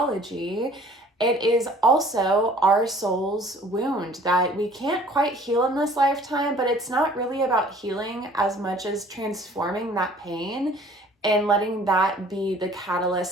it is also our soul's wound that we can't quite heal in this lifetime, but it's not really about healing as much as transforming that pain and letting that be the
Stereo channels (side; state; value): both; normal; correlation 0.53